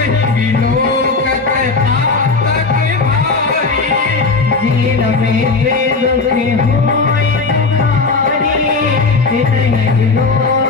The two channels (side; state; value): right; quieter; 4.0 dB